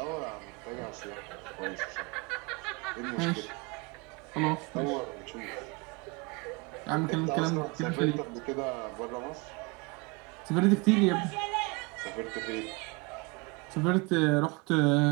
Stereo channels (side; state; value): left; quieter; 28.0 dB